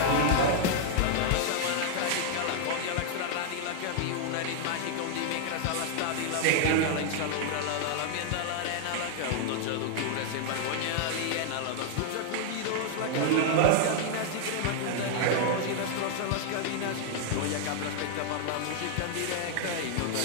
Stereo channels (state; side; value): different; both; correlation 0.00